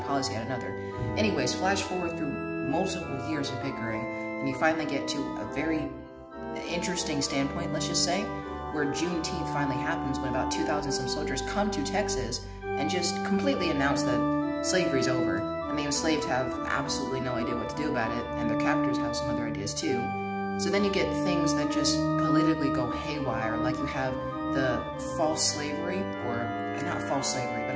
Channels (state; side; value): identical; both; correlation 1.00